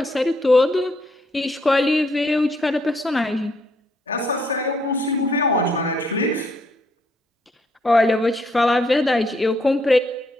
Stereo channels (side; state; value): both; normal; correlation 0.71